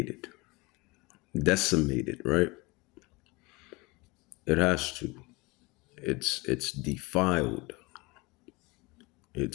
decimated, right? It has to. It's defiled.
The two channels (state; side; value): quieter; right; 24.7 dB